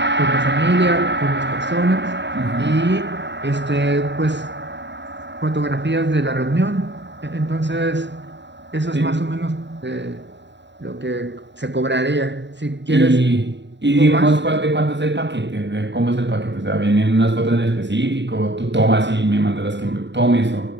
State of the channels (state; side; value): late; left; 0.52 ms